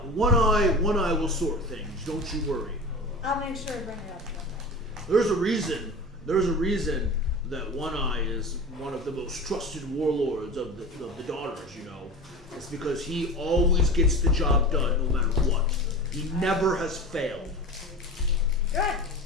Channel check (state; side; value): normal; both; correlation 0.32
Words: One eye will sort things. Don't you worry. I'll make sure to bring it up. There's a reason that One Eye is one of the most trusted warlords of the daughters, you know. It's because he always gets the job done no matter what. He never has failed. Good.